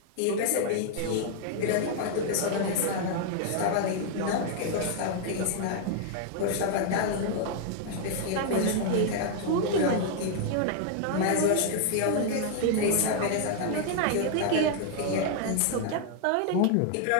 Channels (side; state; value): both; different; correlation 0.00